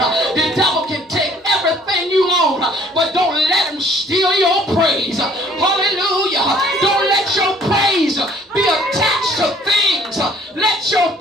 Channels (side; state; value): both; normal; correlation 0.57